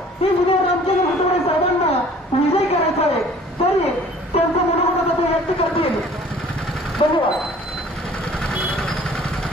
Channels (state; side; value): normal; both; correlation 0.51